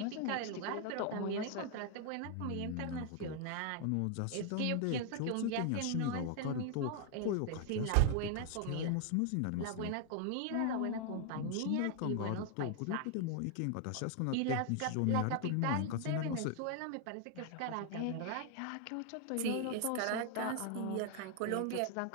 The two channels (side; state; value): both; different; correlation 0.00